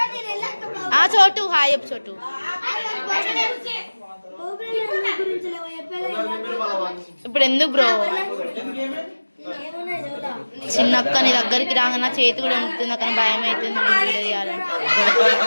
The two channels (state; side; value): inverted; both; correlation -1.00